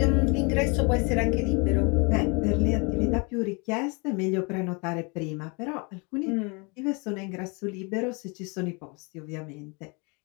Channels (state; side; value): quieter; right; 31.4 dB